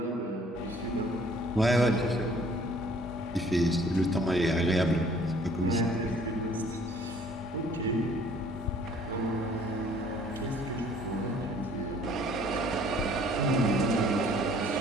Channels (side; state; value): both; normal; correlation 0.56